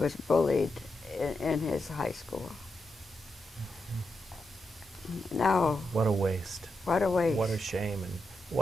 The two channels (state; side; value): normal; both; correlation 0.85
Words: bullied in his high school. Now, What a waste. what a waste. What a shame, and